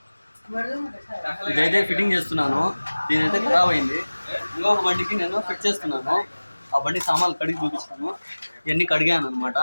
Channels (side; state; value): both; inverted; correlation -1.00